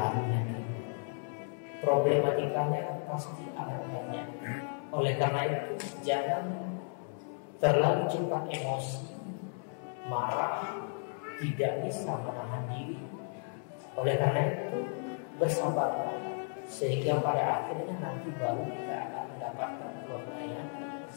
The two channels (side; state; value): right; silent; 55 dB below the other